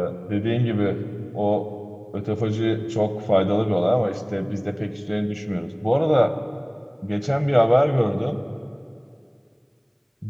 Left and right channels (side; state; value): both; identical; correlation 1.00